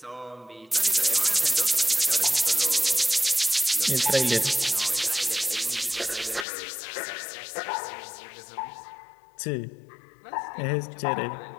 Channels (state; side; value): drops out; right; at 6.5 s